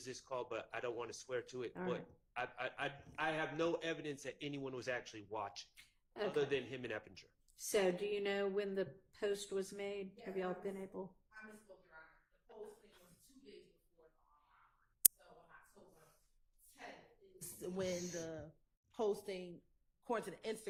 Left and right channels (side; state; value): both; identical; correlation 1.00